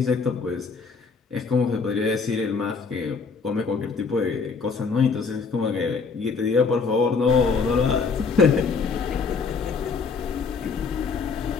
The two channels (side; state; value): right; quieter; 4.9 dB